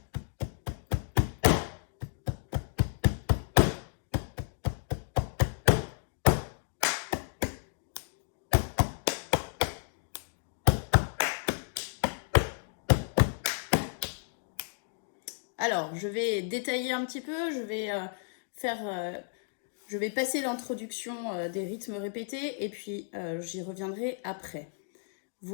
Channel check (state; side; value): silent; right; digital silence